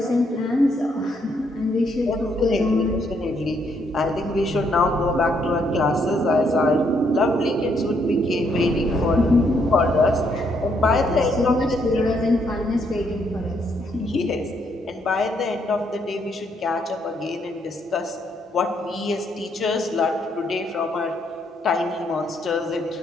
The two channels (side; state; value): both; normal; correlation 0.73